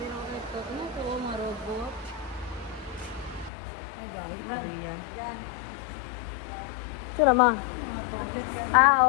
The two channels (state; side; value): drops out; right; at 3.5 s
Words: Ano to, mga robot? Ay, dahil. Korea. Ito na ma? Ah,